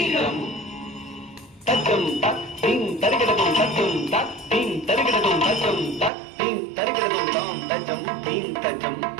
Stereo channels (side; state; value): left; drops out; at 6.1 s